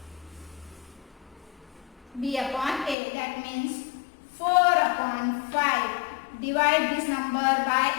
B upon A. That means 4 upon 5. Divide this number by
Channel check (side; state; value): right; drops out; at 3.0 s